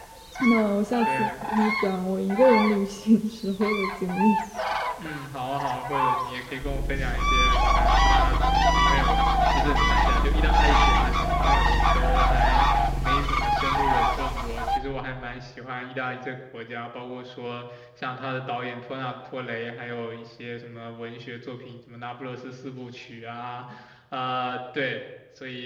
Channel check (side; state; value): both; identical; correlation 1.00